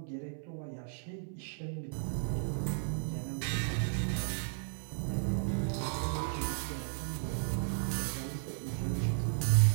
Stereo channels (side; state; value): left; silent; 55 dB below the other